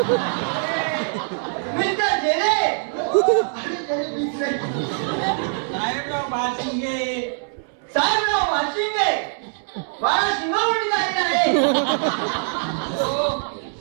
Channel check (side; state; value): left; silent; 63 dB below the other